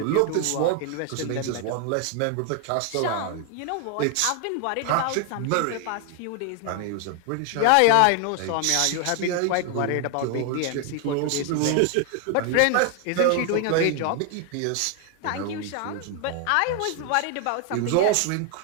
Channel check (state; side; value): different; both; correlation 0.00